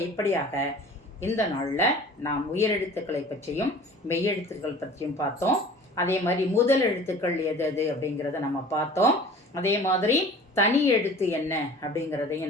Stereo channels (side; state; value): both; normal; correlation 0.44